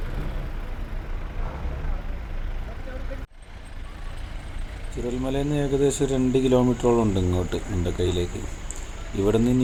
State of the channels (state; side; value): identical; both; correlation 1.00